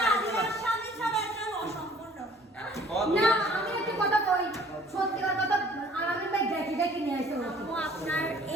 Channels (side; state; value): both; normal; correlation 0.54